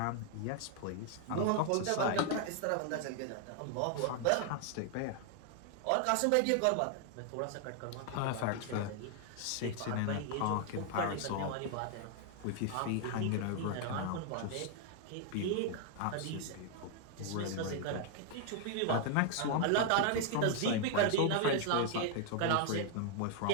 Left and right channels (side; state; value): both; different; correlation 0.00